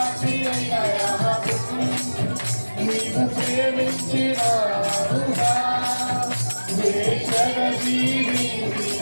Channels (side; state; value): both; inverted; correlation -1.00